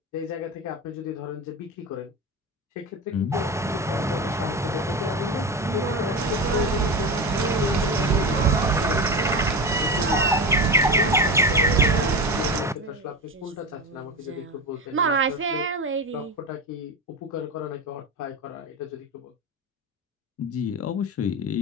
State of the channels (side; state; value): both; normal; correlation 0.24